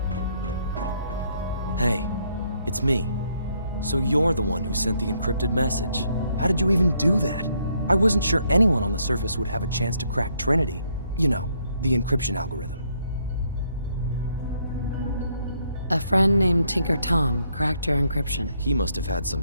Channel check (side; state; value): both; inverted; correlation -0.72